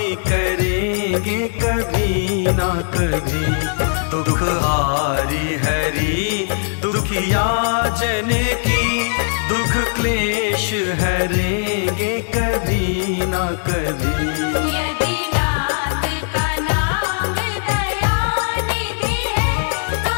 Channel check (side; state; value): right; silent; digital silence